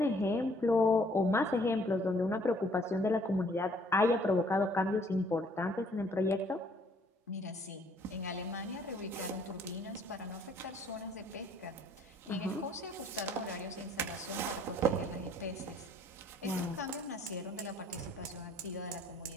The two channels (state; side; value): normal; both; correlation 0.61